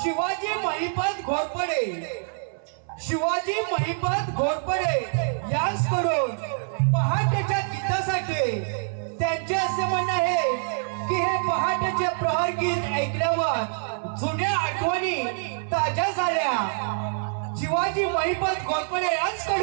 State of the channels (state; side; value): silent; left; 61 dB below the other